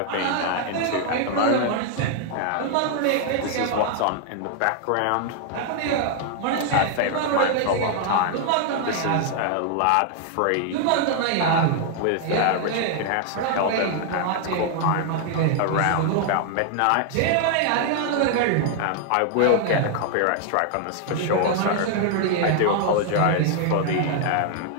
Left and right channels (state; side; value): different; both; correlation 0.00